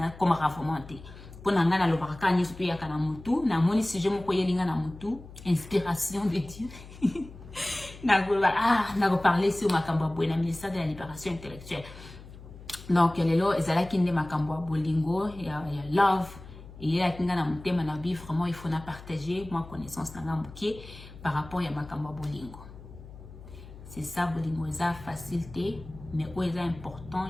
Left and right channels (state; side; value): noise; left; hum, 17 dB below the sound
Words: comme vraiment té pona ngana lo baraka ni surtout ya kana mutu na moni sujet moko yelinga na mutu inspiration de Dieu na parler sur makambo boye na ministère de la libération intellectuelle donc lelo ezalaki nde makambo bolingo ya love et ya kinga na mutema na bi vraiment il faut na partager moi connaissance na ngamuke par rapport à makambo bolingo c'est ça bolingo eza facilité mais o eza